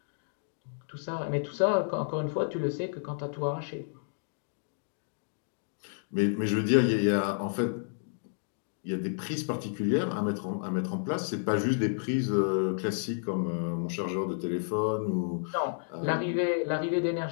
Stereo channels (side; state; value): right; silent; digital silence